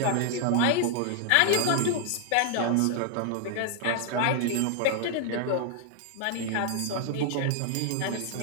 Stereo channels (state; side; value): different; both; correlation 0.00